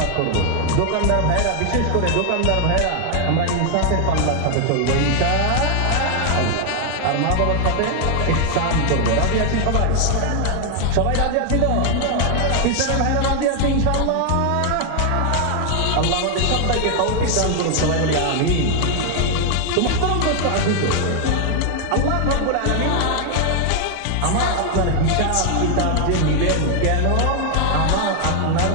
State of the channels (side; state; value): both; different; correlation 0.00